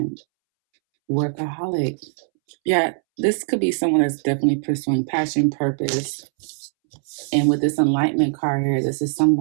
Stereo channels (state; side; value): silent; left; 65 dB below the other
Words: workaholic. Yeah, this could be someone that's definitely pursuing passion, purpose. And with this enlightenment card here, this is